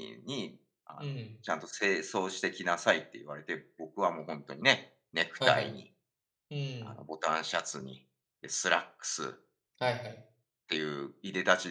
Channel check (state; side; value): identical; both; correlation 1.00